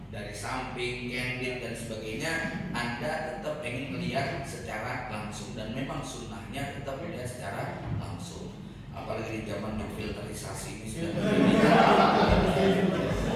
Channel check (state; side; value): identical; both; correlation 1.00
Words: dari samping, candid dan sebagainya, Anda tetap pengen melihat secara langsung dan memang sunnahnya tetap melihat secara langsung. Apalagi di zaman yang filterisasi ini sudah